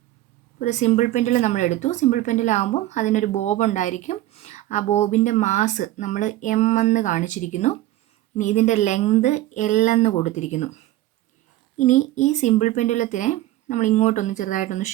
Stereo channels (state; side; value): quieter; left; 15.3 dB